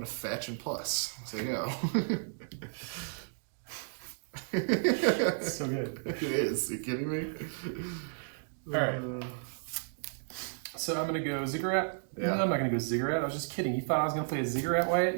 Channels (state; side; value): silent; left; digital silence